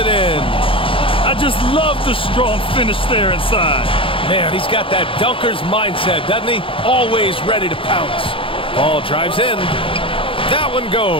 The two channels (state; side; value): late; right; 0.26 ms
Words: in. I just love the strong finish there inside. Man, he's got that dunker's mindset, doesn't he? Always ready to pounce. Paul drives in. That one